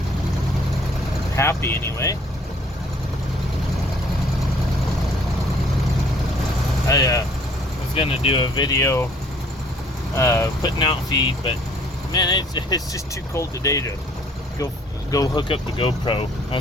Happy anyway. I was gonna do a video putting out feed, but man, it's just too cold today to go hook up the GoPro. I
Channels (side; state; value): both; normal; correlation 0.58